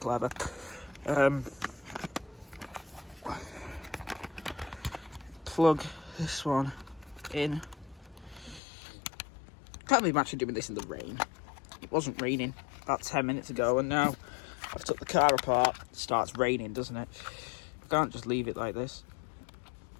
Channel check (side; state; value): right; drops out; at 8.6 s